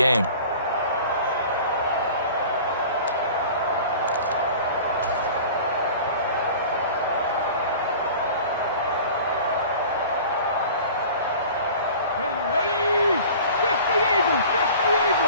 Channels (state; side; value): inverted; both; correlation -0.42